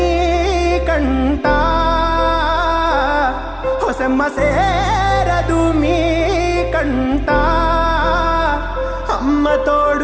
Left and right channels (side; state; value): both; identical; correlation 1.00